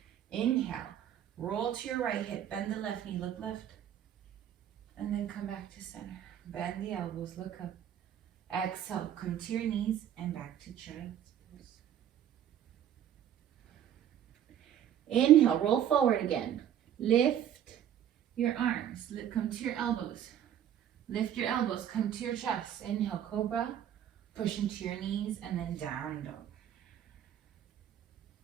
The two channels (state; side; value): quieter; left; 10.2 dB